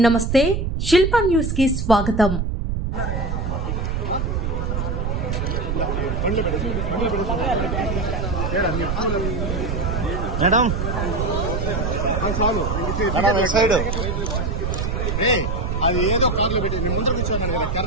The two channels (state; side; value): noise; right; rumble, 1 dB below the sound